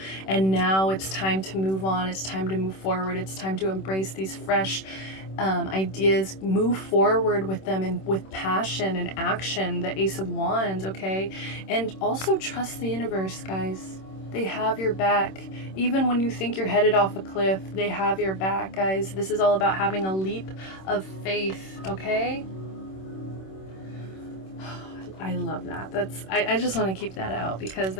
and now it's time to move on. It's time to move forward. It's time to embrace these fresh ideas, move forward with them and with passion and action. The Ace of Wands, okay? And also trust the universe, guys. They have your back. Even when you think you're headed off a cliff, they have your back, guys. This is all about having a leap of faith, okay? I love that. I just want to keep that out because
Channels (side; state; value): right; late; 26 ms